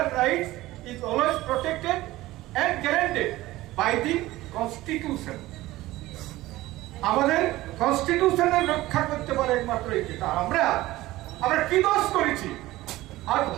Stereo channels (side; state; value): left; quieter; 17.4 dB